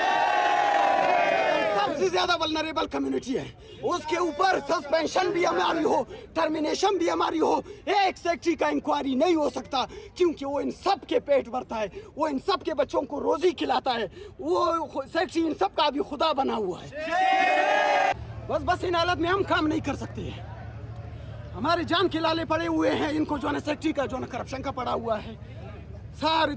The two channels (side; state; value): both; identical; correlation 1.00